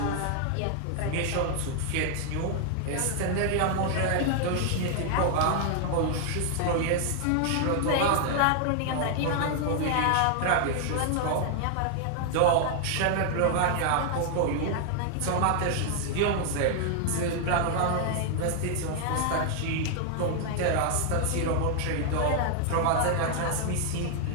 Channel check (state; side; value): different; both; correlation 0.00